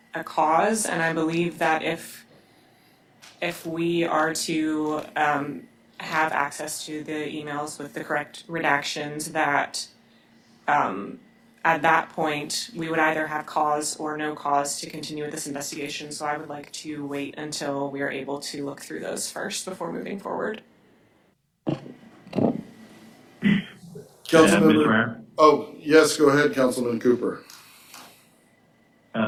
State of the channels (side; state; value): both; identical; correlation 1.00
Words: cause, and I believe that if we are to have access to the emails with the correct redactions, that at that point we would either have cause or no cause to continue with this investigation. So I would like to wait until we are able to look through those first before moving forward. Councilmember. Mr. Mayor? Oh, yes, go ahead, Councilman Cooper.